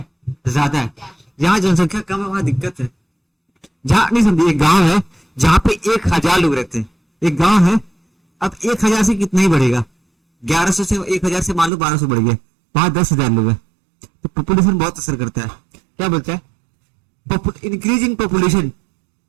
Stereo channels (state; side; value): drops out; left; at 11.7 s